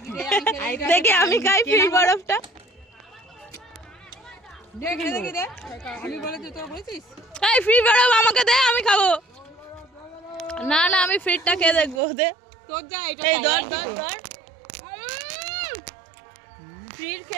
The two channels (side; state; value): left; drops out; at 12.0 s